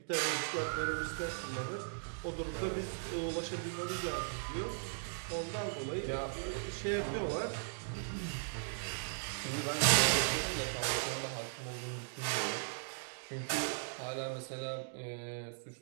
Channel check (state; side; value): silent; left; digital silence